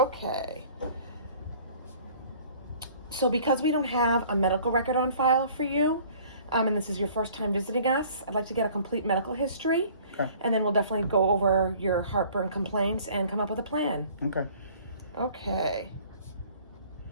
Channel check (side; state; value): both; inverted; correlation -0.52